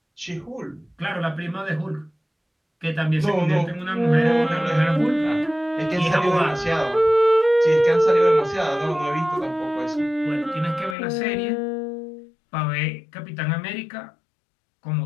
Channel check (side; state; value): right; drops out; at 11.0 s